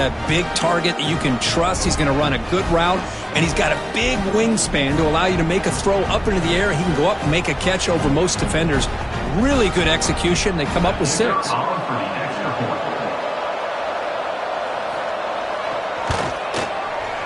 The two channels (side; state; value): both; identical; correlation 1.00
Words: big target that you can trust. He's going to run a good route, and he's got a big wingspan to allow you to make a throw up into the air. He can go up and make a catch over most defenders. Really good execution. They come up with 6.